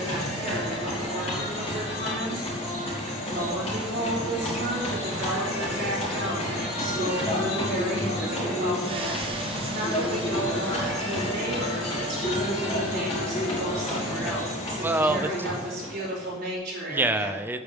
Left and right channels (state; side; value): normal; both; correlation 0.33